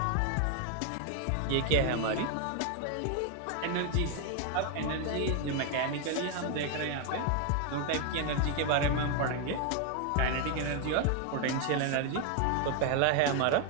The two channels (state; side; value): different; both; correlation 0.00